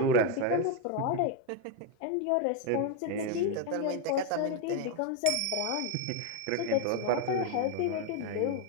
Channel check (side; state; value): both; different; correlation 0.02